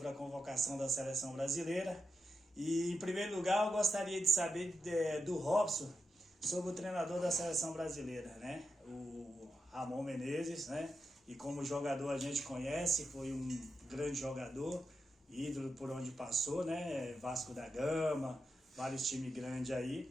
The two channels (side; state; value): both; normal; correlation 0.86